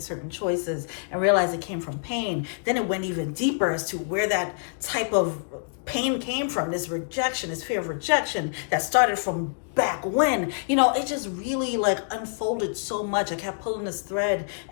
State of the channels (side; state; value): right; silent; digital silence